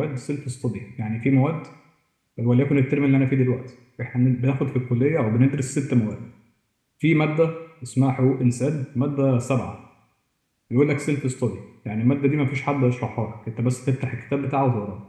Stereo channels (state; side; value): identical; both; correlation 1.00